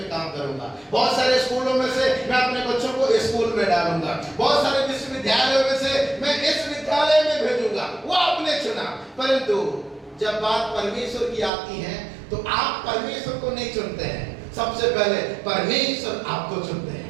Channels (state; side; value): drops out; left; at 11.5 s